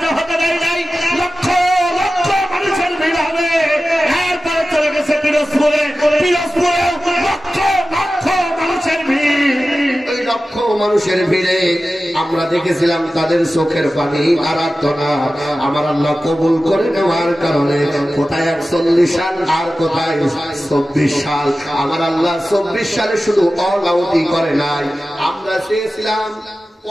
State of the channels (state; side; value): normal; both; correlation 0.95